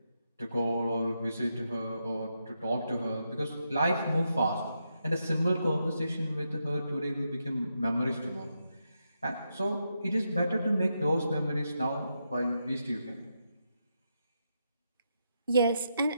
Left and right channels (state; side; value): inverted; both; correlation -0.83